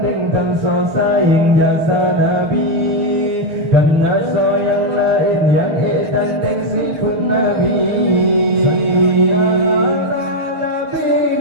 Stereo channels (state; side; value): late; left; 6.9 ms